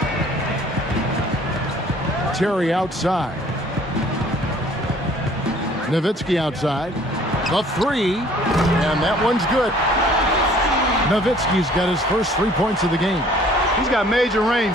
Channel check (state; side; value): normal; both; correlation 0.55